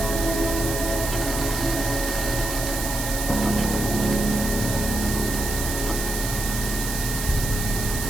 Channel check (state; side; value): noise; right; hiss, 4 dB below the sound